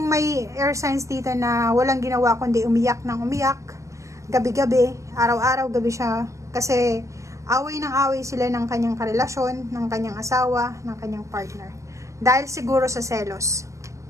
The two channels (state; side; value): late; left; 0.15 ms